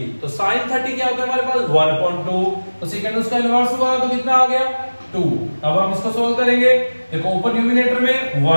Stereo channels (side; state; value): both; inverted; correlation -1.00